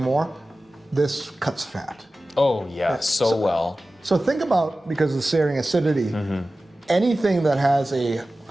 This cuts fat. Oh yeah, so well. So think about, because of the searing acidity, anything that has a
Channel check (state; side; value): normal; both; correlation 0.96